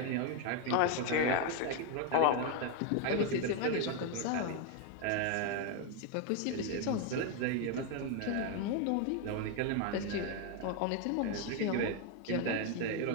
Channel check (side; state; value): both; different; correlation 0.01